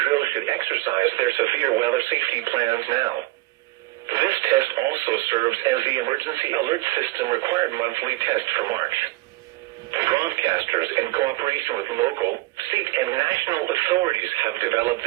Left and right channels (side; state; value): left; quieter; 20.5 dB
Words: should exercise their severe weather safety plans now. This test also serves as the Emergency Alert System required monthly test for March. Broadcasters, in cooperation with local, state, and national authorities, have developed